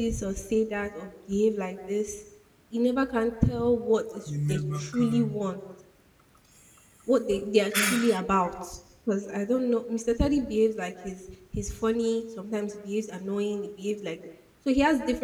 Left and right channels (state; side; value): identical; both; correlation 1.00